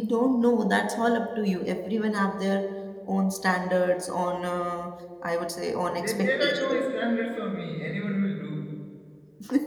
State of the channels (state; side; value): identical; both; correlation 1.00